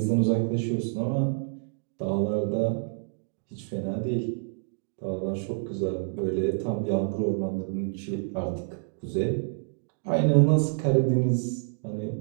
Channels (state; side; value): silent; left; digital silence